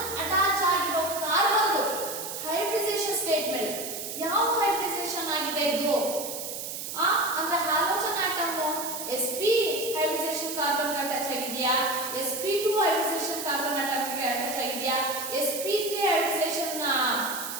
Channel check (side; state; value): right; noise; hiss, 6 dB below the sound